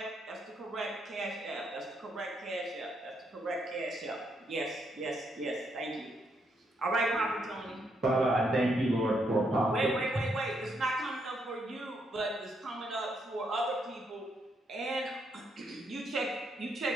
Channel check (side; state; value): both; normal; correlation 0.76